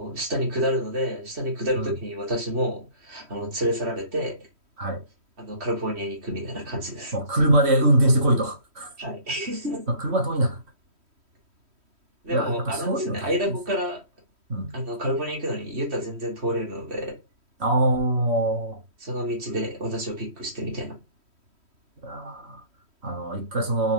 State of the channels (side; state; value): left; late; 3.1 ms